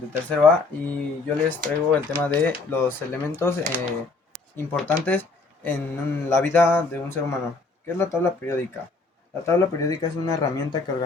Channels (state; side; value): quieter; right; 3.7 dB